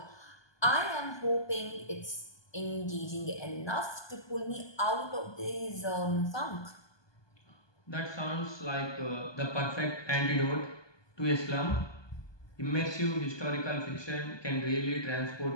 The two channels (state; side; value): late; right; 1.2 ms